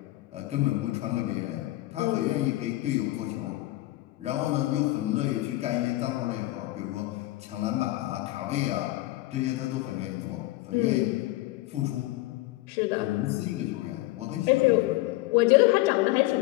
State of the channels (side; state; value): right; quieter; 18.2 dB